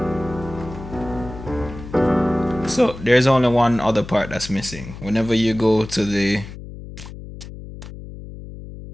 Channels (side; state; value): left; noise; hum, 13 dB below the sound